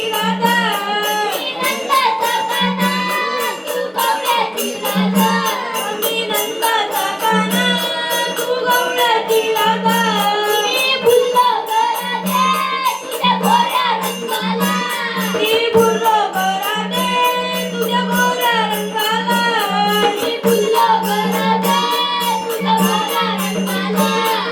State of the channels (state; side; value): identical; both; correlation 1.00